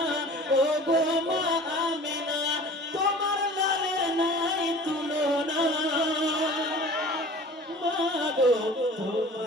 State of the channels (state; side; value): normal; both; correlation 0.43